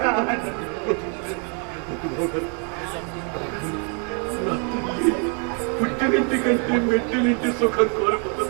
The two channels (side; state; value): left; quieter; 39.6 dB